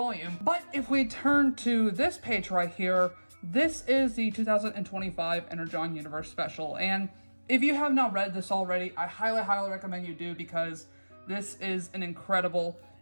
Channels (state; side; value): inverted; both; correlation -1.00